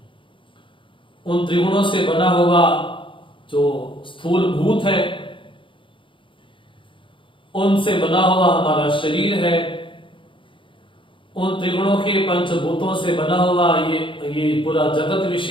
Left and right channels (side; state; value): right; late; 0.25 ms